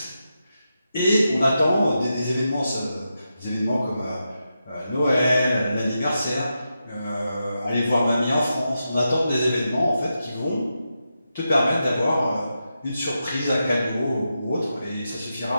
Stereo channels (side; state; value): both; inverted; correlation -0.87